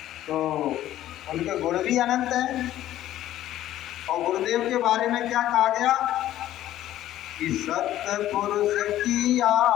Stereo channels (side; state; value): right; quieter; 13.3 dB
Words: तो उनके गुण भी अनंत हैं। और गुरुदेव के बारे में क्या कहा गया कि सत्पुरुष की